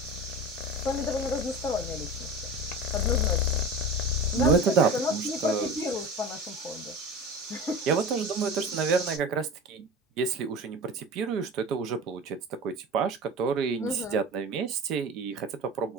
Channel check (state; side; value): normal; both; correlation 0.32